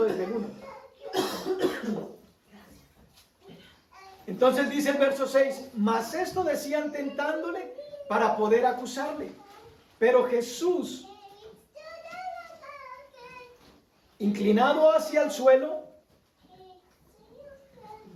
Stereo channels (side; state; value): both; identical; correlation 1.00